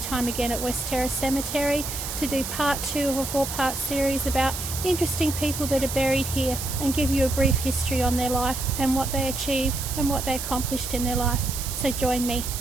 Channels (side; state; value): right; noise; hiss, 6 dB below the sound